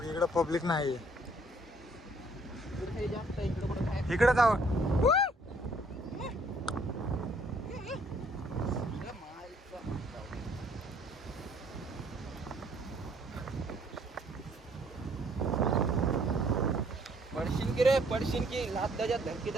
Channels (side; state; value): both; normal; correlation 0.63